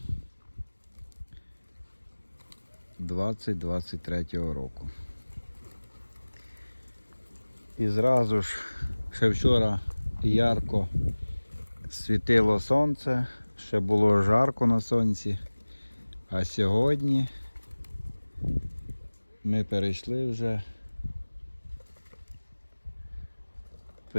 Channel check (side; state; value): both; inverted; correlation -1.00